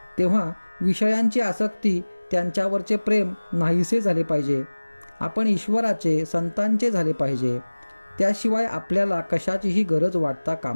तेव्हा विषयांची आसक्ती, त्यांच्यावरचे प्रेम नाहीसे झाले पाहिजे. आपण ईश्वराचे, संतांचे झाले पाहिजे. त्याशिवाय आपल्याला कशाचीही गरज वाटता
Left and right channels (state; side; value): inverted; both; correlation -1.00